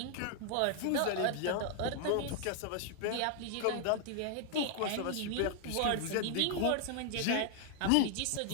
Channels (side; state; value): both; different; correlation 0.00